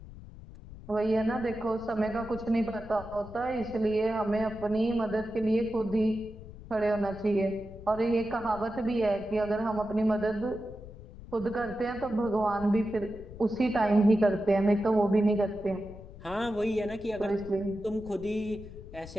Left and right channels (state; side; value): noise; left; rumble, 15 dB below the sound